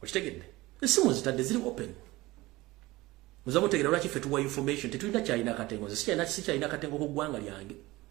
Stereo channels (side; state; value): left; quieter; 19.7 dB